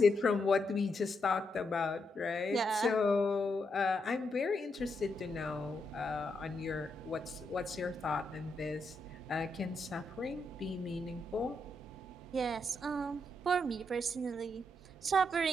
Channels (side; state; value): both; normal; correlation 0.81